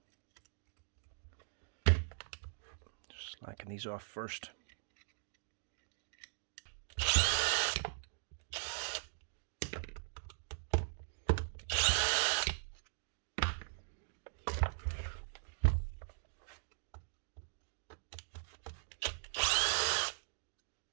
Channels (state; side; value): silent; left; digital silence